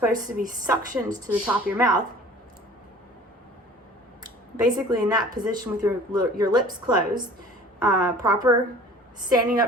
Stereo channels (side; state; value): both; normal; correlation 0.46